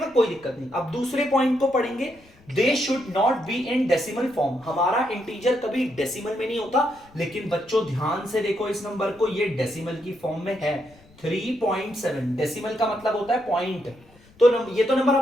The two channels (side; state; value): left; noise; rumble, 27 dB below the sound